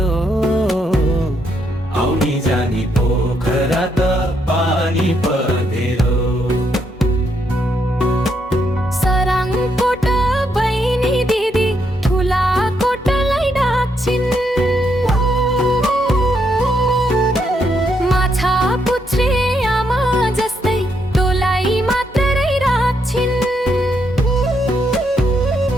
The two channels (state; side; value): normal; both; correlation 0.77